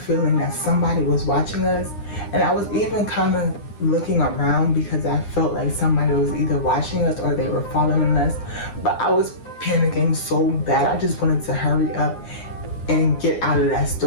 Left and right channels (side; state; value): right; late; 9.9 ms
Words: that somebody was watching us, and I was even kind of looking around because I felt like somebody was either watching us or they were following us. But I was panicking so bad. I just wanted to hurry up and get out of that